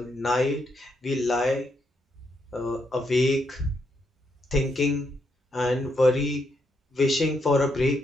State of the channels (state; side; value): normal; both; correlation 0.78